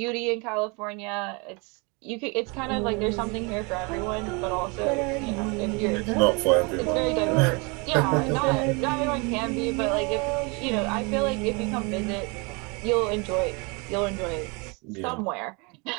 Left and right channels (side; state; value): left; quieter; 30.2 dB